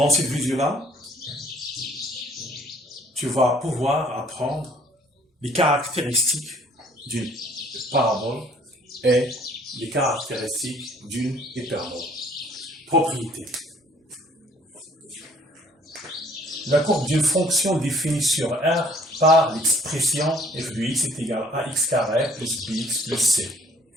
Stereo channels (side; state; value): both; normal; correlation 0.58